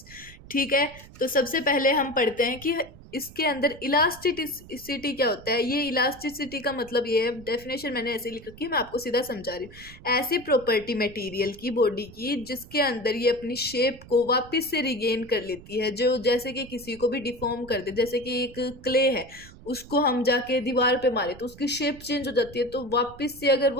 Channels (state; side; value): noise; right; rumble, 19 dB below the sound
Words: ठीक है। तो सबसे पहले हम पढ़ते हैं कि इसके अंदर इलास्टिसिटी क्या होता है। ये इलास्टिसिटी का मतलब ये है, डेफिनेशन मैंने ऐसे लिख रखी है, मैं आपको सीधा समझा रही हूँ। ऐसी प्रॉपर्टी मटेरियल की, बॉडी की, जिसके अंदर ये अपनी शेप को वापस से रिगेन कर लेती है। जो जैसे कि किसी को भी डिफॉर्म कर दे, जैसे कि एक क्ले है, उसको हम जाके दीवार पे मारे तो उसकी शेप चेंज हो जाती है। तो वापस से अगर